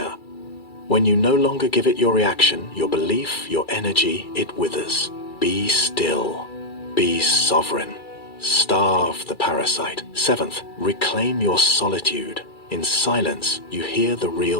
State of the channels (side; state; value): right; late; 2.3 ms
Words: When you no longer give it your reaction, your belief, your energy, it withers. Be still. Be sovereign. Starve the parasite. Seventh, reclaim your solitude. In silence, you hear the